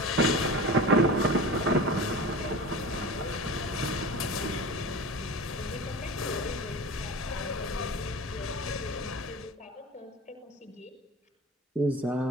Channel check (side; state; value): both; normal; correlation 0.33